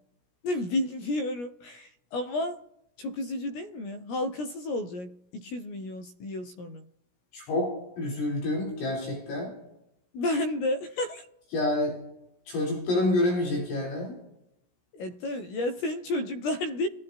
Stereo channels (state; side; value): late; right; 17 ms